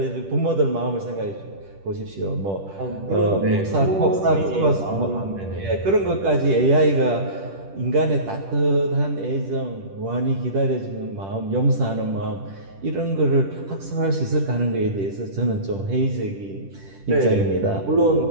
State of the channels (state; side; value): late; left; 10 ms